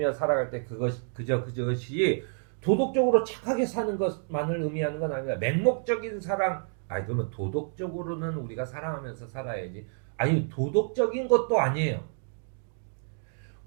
살아갈 때 그것이 도덕적으로 착하게 사는 것만을 의미하는 건 아니라 맹목적인 사랑. 그러면 도덕적으로는 우리가 사랑하면서 살아야지. 도덕적인 것도 아니에요.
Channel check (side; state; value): left; silent; 59 dB below the other